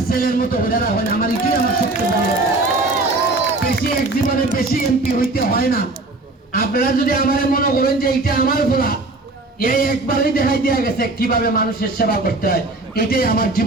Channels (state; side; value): quieter; left; 3.0 dB